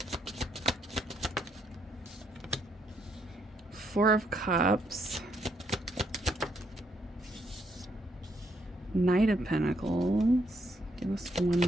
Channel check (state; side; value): normal; both; correlation 0.74